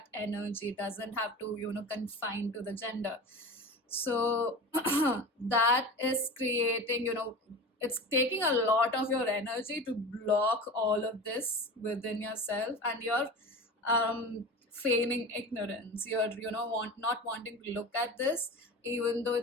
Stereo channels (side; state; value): both; normal; correlation 0.31